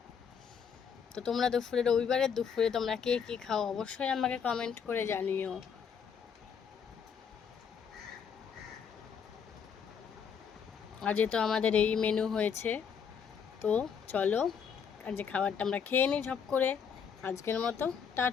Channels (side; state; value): right; quieter; 6.9 dB